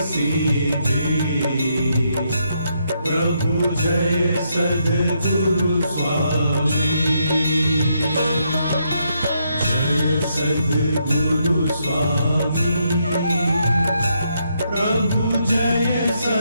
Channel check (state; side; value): inverted; both; correlation -0.77